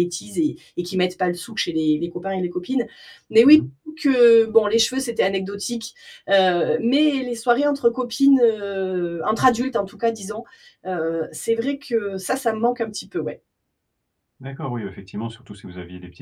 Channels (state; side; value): identical; both; correlation 1.00